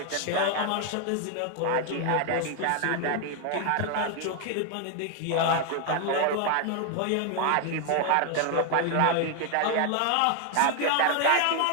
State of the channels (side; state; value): both; different; correlation 0.00